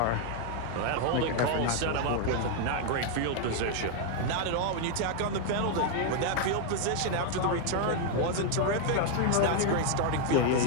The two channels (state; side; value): different; both; correlation 0.00